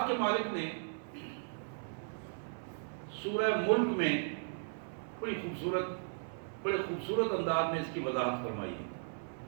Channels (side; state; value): left; silent; 54 dB below the other